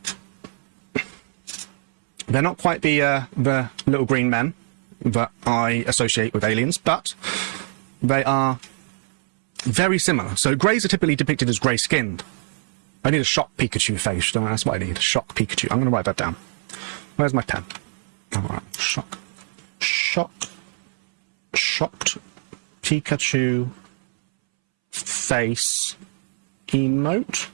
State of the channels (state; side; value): silent; left; 63 dB below the other